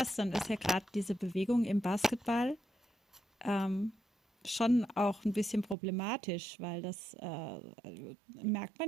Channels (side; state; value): left; drops out; at 5.8 s